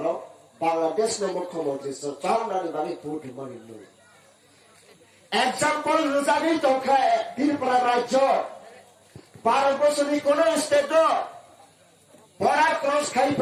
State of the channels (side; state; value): both; identical; correlation 1.00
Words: Bangladesh no mukhomantri so chaunani bani vote mani no example rujani tokha Tripura rajyo 12 বছরের কোন স্টেট বড়া ক্রস খাই